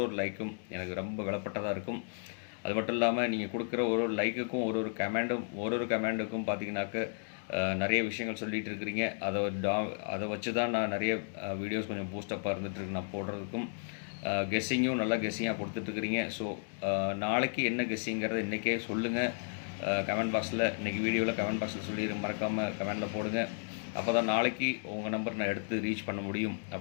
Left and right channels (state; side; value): silent; right; digital silence